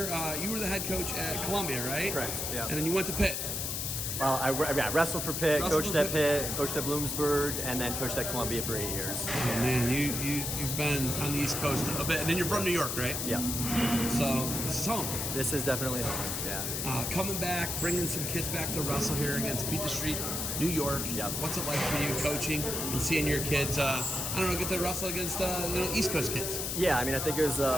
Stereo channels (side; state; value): left; noise; hiss, 2 dB below the sound